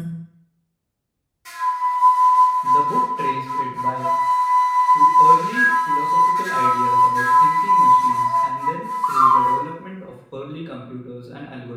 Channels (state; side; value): identical; both; correlation 1.00